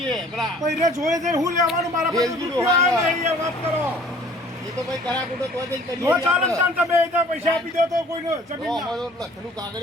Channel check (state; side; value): normal; both; correlation 0.53